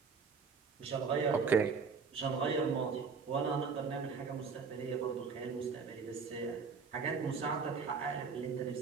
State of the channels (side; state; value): left; quieter; 5.4 dB